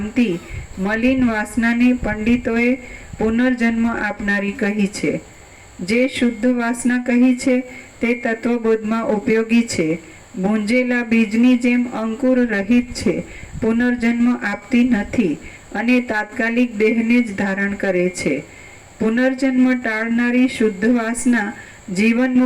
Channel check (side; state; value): both; identical; correlation 1.00